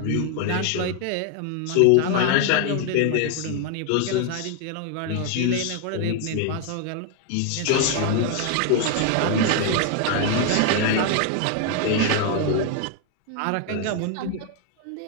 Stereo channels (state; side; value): different; both; correlation 0.00